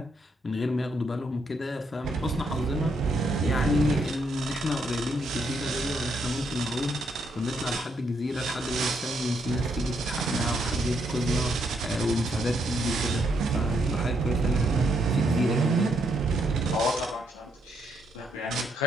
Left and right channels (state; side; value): normal; both; correlation 0.76